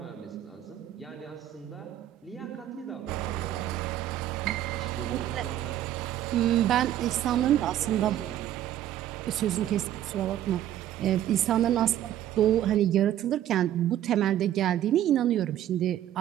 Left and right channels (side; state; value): left; quieter; 12.0 dB